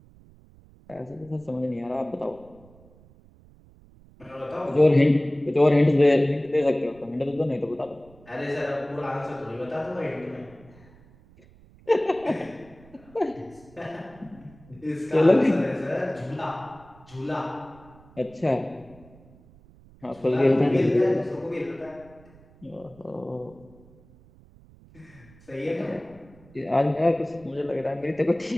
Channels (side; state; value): right; noise; rumble, 25 dB below the sound